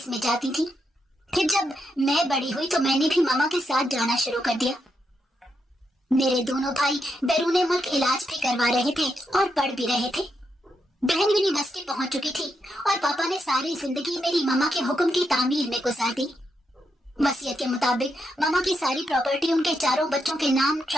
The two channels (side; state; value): both; normal; correlation 0.82